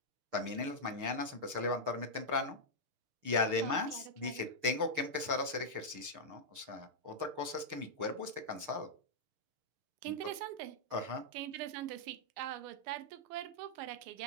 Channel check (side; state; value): left; late; 6.6 ms